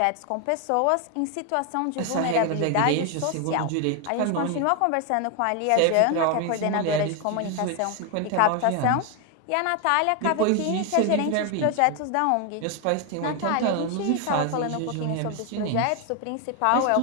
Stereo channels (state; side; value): different; both; correlation 0.01